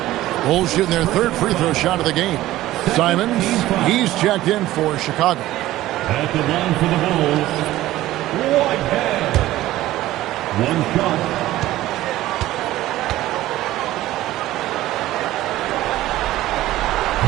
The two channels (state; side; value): quieter; left; 15.6 dB